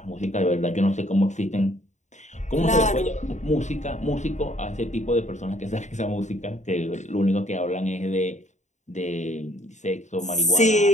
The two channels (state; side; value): late; right; 0.34 ms